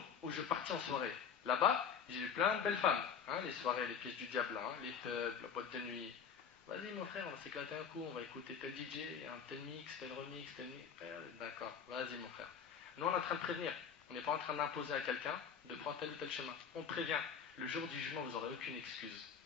où je partis en soirée. Là-bas, j'ai vu plein de belles femmes, hein, les soirées, les pièces du diable, hein, les pubs, la boîte de nuit. Vas-y mon frère, on va s'éclater un coup, on va écouter tel DJ, un tel mix, tel remix, tel mix. D'accord, vas-y mon frère. Nous on est en train de prévenir, on n'est pas en train d'imposer à quelqu'un de prendre tel ou tel chemin. On prévient, le jour du jugement vous n'aurez aucune excuse.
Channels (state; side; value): quieter; right; 7.1 dB